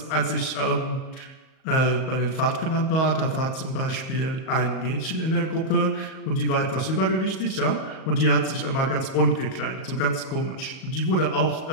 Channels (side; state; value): right; late; 38 ms